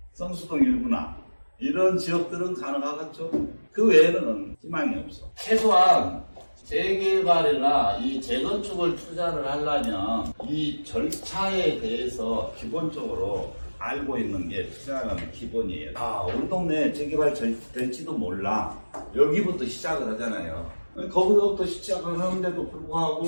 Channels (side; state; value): both; inverted; correlation -1.00